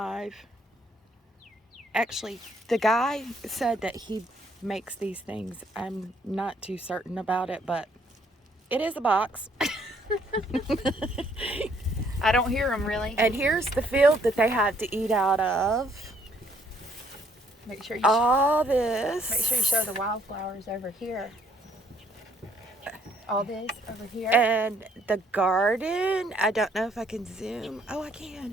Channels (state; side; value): normal; both; correlation 0.66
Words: Actually, the guy said that he makes these things. I'm not too certain about it, but it is a box. I don't hear them really. And here's the field that they have to eat out of. Make sure you All this. Make sure you show the wildflowers over here. All this over here. And the garden. I don't know if I can zoom. Oh, I